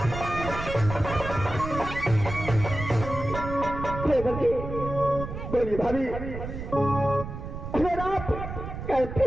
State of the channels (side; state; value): right; noise; rumble, 8 dB below the sound